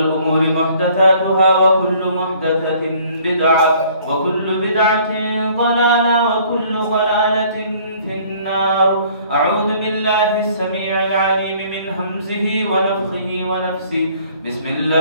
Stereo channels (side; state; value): both; inverted; correlation -0.57